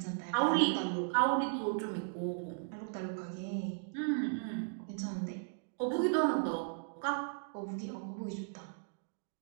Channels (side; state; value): left; silent; digital silence